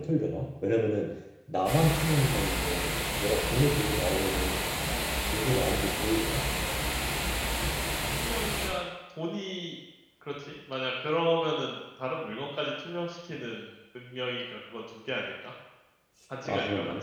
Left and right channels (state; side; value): identical; both; correlation 1.00